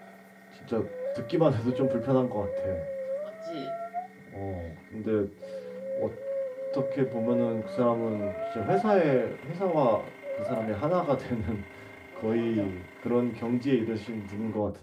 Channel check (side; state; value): both; identical; correlation 1.00